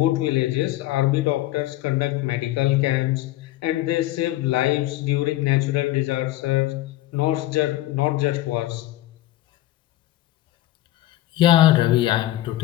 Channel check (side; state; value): right; quieter; 15.5 dB